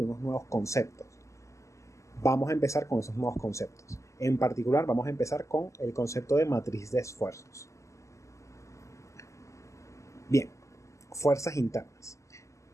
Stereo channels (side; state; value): right; late; 0.15 ms